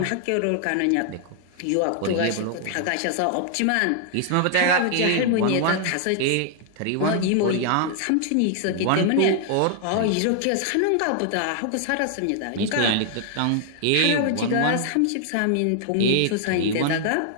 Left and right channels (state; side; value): different; both; correlation 0.00